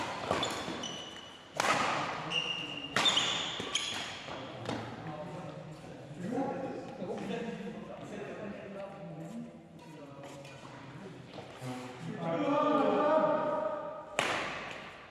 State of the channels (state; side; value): identical; both; correlation 1.00